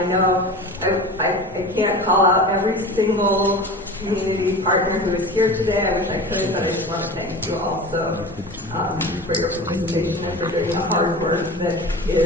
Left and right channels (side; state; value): both; normal; correlation 0.33